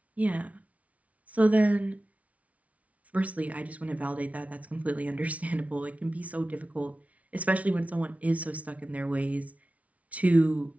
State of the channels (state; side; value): late; left; 0.067 ms